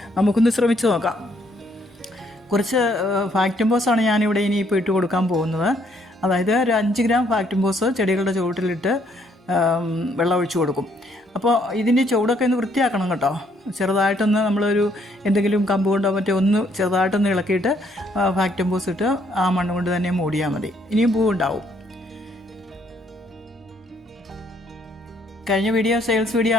നമുക്കൊന്ന് ശ്രമിച്ചു നോക്കാം. കുറച്ച് ഫാക്ടംബോസാണ് ഞാനിവിടെ ഇനിയിപ്പോൾ ഇട്ട് കൊടുക്കാൻ പോകുന്നത്. അതായത് ഒരു 5 ഗ്രാം ഫാക്ടംബോസ് ചെടികളുടെ ചുവട്ടിലിട്ട് വെള്ളം ഒഴിച്ചു കൊടുക്കും. അപ്പോൾ ഇതിൻ്റെ ചുവടൊക്കെ ഒന്ന് വൃത്തിയാക്കണം കേട്ടോ. ചെറുതായിട്ടൊന്ന് നമ്മളൊരു എന്തെങ്കിലും കമ്പ് കൊണ്ടോ മറ്റോ ഒന്ന് ചെറുതായിട്ടൊന്ന് ഇളക്കിയിട്ട് ഫാക്ടംബോസ് ഇട്ട് ആ മണ്ണ് കൊണ്ട് തന്നെ മൂടിയാൽ മതി. ഇനിയും പൂവുണ്ടാവും. കഴിഞ്ഞ വീഡിയോ സെയിൽസ് വീഡിയോ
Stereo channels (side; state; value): both; normal; correlation 0.68